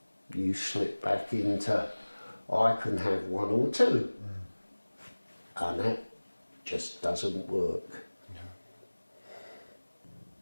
you slip back into I can have one or two. and that just doesn't work.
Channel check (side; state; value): both; inverted; correlation -1.00